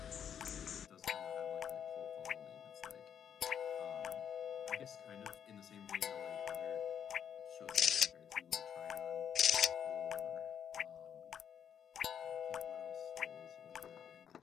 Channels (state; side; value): quieter; right; 8.5 dB